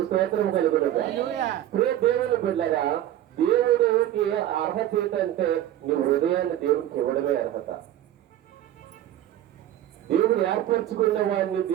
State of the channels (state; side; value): quieter; left; 12.4 dB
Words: స్తోత్రం కలుగునగా. దేవుని బిడ్డలారా, దేవుడికి అర్హత ఏంటంటే నీ హృదయాన్ని దేవుడికి ఇవ్వడమే అర్హత. దేవుడు ఏర్పరచుకున్న వాడిని